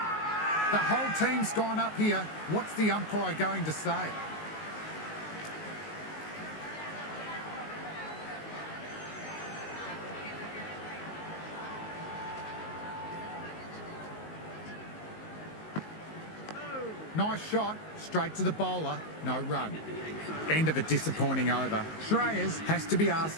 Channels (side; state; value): right; late; 19 ms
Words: The whole team's gone up here. What's the umpire going to say? Nice shot, straight to the bowler, no run. End of a disappointing over. Shreyas has to be